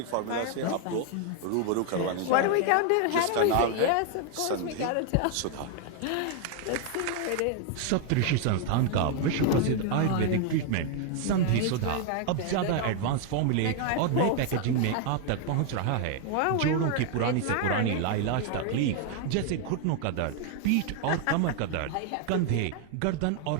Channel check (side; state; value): both; different; correlation 0.00